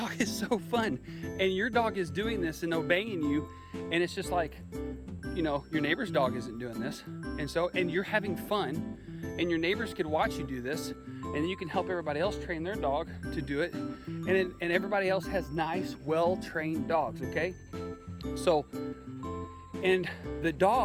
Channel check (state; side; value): identical; both; correlation 1.00